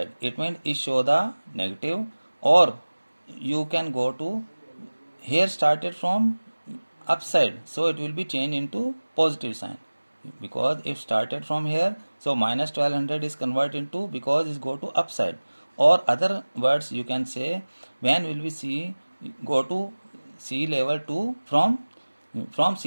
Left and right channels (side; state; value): both; inverted; correlation -1.00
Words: it means it show the negative, or you can go to here started from upside, so it will be changed into positive sign, because if started from here, so minus 1200 is converted into, because it go to upside, or other words you can say when will we see go to sea level to from